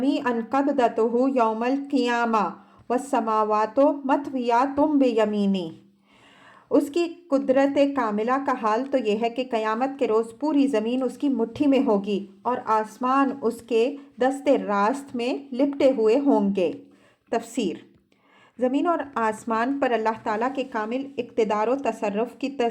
قَبْضَتُهُ يَوْمَ الْقِيَامَةِ وَالسَّمَاوَاتُ مَطْوِيَّاتٌ بِيَمِينِهِ، اس کی قدرت کاملہ کا حال تو یہ ہے کہ قیامت کے روز پوری زمین اس کی مٹھی میں ہوگی اور آسمان اس کے دست راست میں لپٹے ہوئے ہوں گے۔ تفسیر، زمین اور آسمان پر اللہ تعالیٰ کے کامل اقتدار و تصرف کی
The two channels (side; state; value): both; identical; correlation 1.00